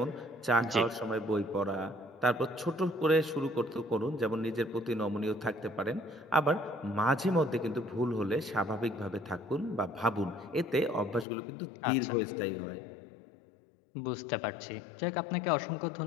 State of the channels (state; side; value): drops out; right; at 11.2 s